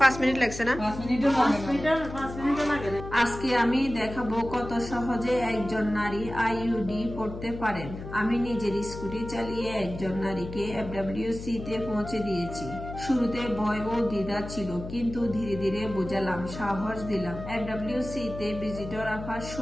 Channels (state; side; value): noise; left; hum, 10 dB below the sound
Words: 5 মিনিট লাগছে না? 5 মিনিটও লাগে না। আজকে আমি দেখাবো কত সহজে একজন নারী আইইউডি পড়তে পারেন। আমি নিজের স্কুটি চালিয়ে একজন নারীকে FWC তে পৌঁছে দিয়েছি। শুরুতে ভয় ও দ্বিধা ছিল, কিন্তু ধীরে ধীরে বোঝালাম, সাহস দিলাম। FWC তে ভিজিটর আফা